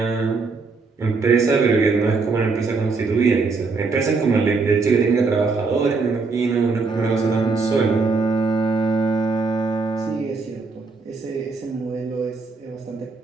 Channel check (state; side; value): quieter; left; 4.3 dB